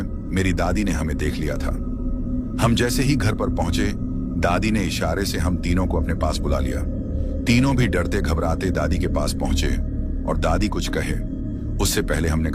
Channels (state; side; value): identical; both; correlation 1.00